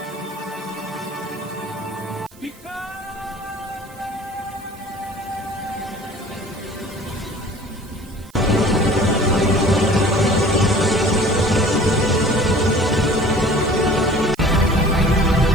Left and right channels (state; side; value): noise; right; hiss, 26 dB below the sound